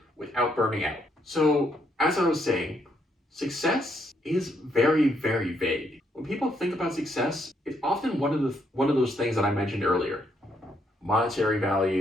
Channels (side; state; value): both; normal; correlation 0.74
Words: without burning out. So, as I was saying, success is very, very vague. When people think about success, it's often one of those things that I mentioned earlier. Monetary